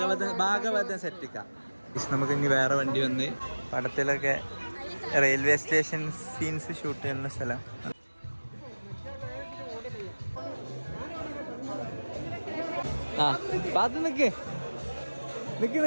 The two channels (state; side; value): inverted; both; correlation -1.00